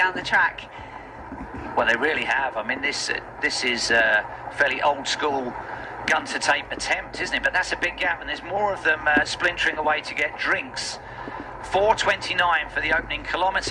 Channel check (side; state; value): both; identical; correlation 1.00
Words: the track. Well, they really have. I mean, this is a fairly old school gun to tape attempt, isn't it? But that's a big gap, and there's more of them splintering away to get drinks. 4:29 for the opening